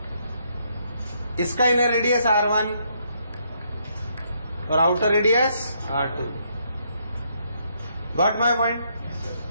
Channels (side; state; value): both; inverted; correlation -0.73